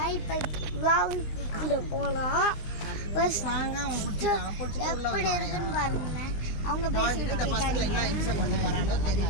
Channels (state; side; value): late; right; 20 ms